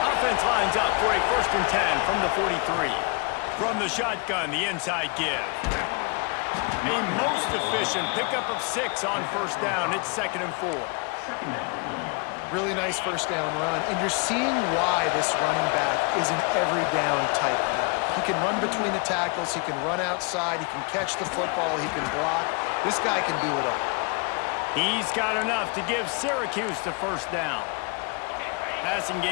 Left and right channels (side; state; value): right; quieter; 32.5 dB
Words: lines up for a 1st and 10 from the 43. From the shotgun, the inside give. A most efficient pickup of 6 on first down. It's 2nd and 4. Really nice first down run, and you're seeing why this running back is an every down type guy. He can run between the tackles, he can run outside, he can catch the football, he can block. This guy can do it all. He's got enough to give Syracuse the first down. Passing